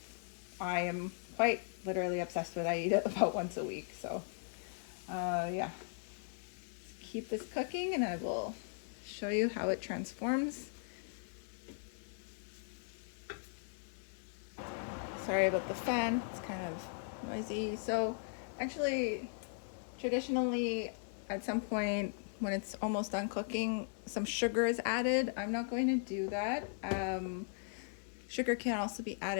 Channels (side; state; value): right; silent; digital silence